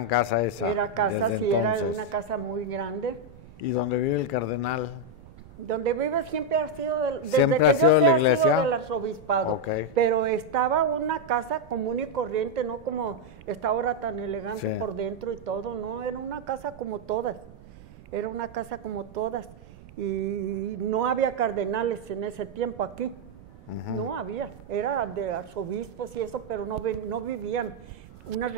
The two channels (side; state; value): right; noise; rumble, 20 dB below the sound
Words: casa esa. Era casa, sí, era una casa muy grande. ¿Y donde vive el cardenal? Donde vive siempre ha sido, ¿Siempre ha sido de la iglesia? Del arzobispado. Okay. Pero estaba una casa común y corriente, no como está ahora tan elegante por dentro y todo, no, era una casa como todas. Era una casa como todas. Y no había cardenales en ese tiempo aquí. No había. Era de arzobispos y eso, pero no vivían. Unas